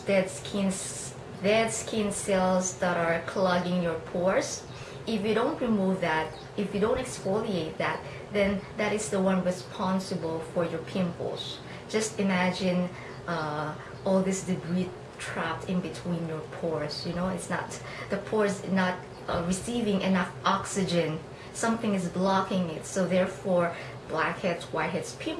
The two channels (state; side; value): identical; both; correlation 1.00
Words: dead skin cells that are clogging your pores. If you don't remove that, if you don't exfoliate that, then that is the one responsible for your pimples. Just imagine all this debris trapped in between your pores. It's not, the pores not receiving enough oxygen. Something is blocking it, so therefore blackheads, whiteheads,